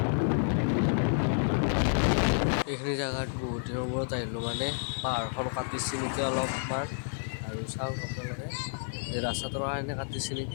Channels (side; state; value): right; silent; digital silence